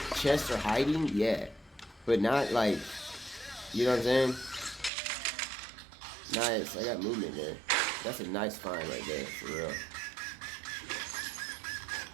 chests are hiding, yeah. But not like, you know what I'm saying? Nice. I got movement there. That's a nice find right there, for real.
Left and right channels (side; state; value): left; drops out; at 4.9 s